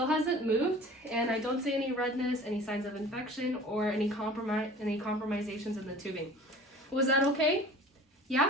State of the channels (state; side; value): normal; both; correlation 0.44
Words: hasn't moved, and I don't see any redness, any signs of infection, or any compromisations in the tubing. Was that okay? Yeah?